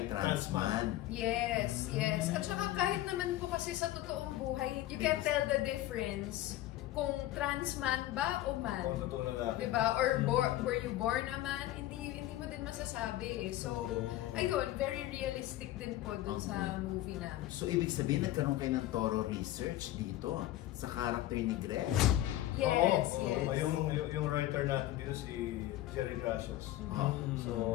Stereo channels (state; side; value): quieter; right; 14.8 dB